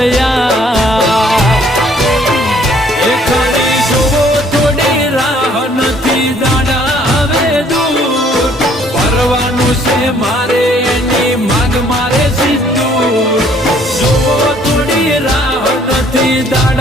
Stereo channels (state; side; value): normal; both; correlation 0.62